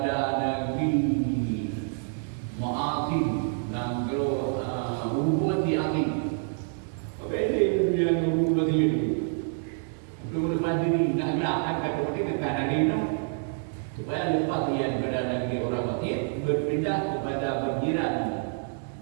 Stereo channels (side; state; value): left; silent; 60 dB below the other